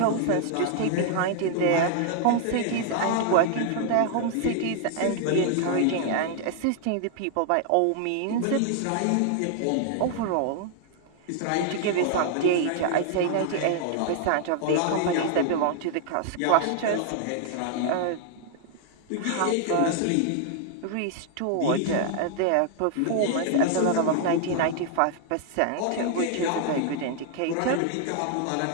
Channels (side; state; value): both; different; correlation 0.00